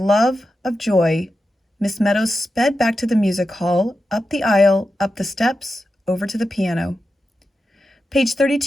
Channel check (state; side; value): normal; both; correlation 0.90